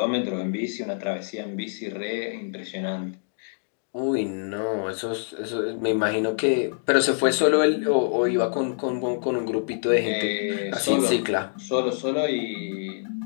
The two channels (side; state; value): right; silent; digital silence